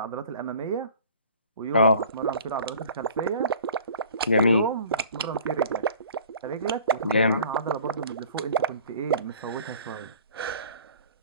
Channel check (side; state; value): both; inverted; correlation -0.49